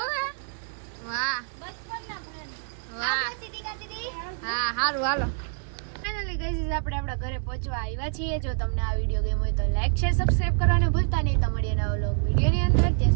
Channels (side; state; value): left; silent; 57 dB below the other